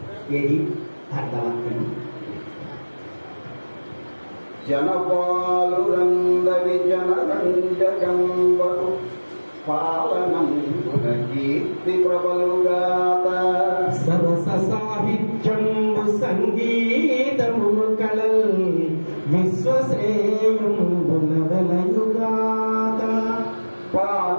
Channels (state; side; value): inverted; both; correlation -1.00